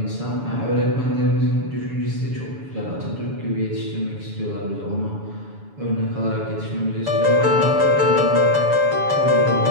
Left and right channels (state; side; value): late; left; 7.0 ms